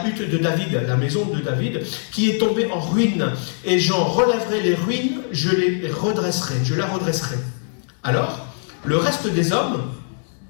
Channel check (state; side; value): silent; right; digital silence